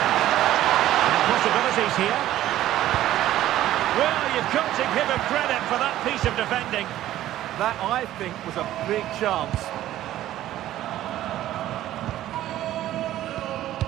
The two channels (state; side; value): quieter; left; 13.6 dB